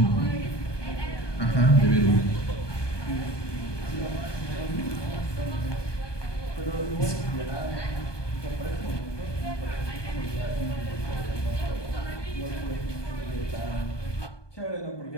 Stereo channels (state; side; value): late; right; 1.2 ms